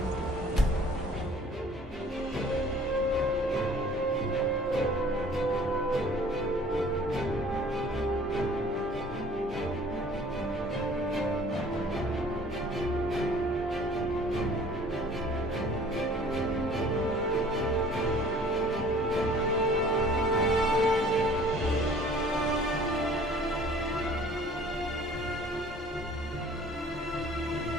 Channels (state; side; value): normal; both; correlation 0.51